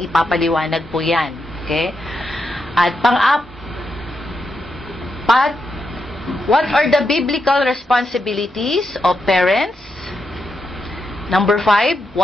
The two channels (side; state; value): both; normal; correlation 0.84